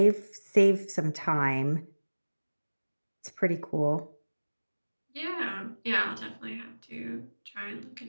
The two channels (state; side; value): inverted; both; correlation -1.00